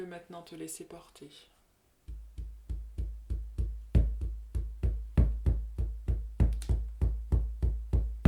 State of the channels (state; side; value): identical; both; correlation 1.00